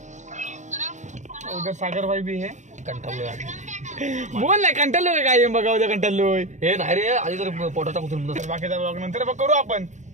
उधर सागर भाई भी है. कंटाळलोय बोल ना कंटाळलोय काय बघा उद्या कंटाळलोय. हे नाही रे आधी तर पोटाचा कुठून बाकीचा ब्लॉग नंतर करू आपण.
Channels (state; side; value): late; left; 0.35 ms